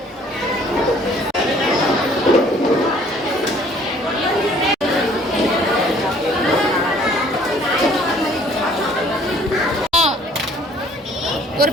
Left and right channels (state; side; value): normal; both; correlation 0.57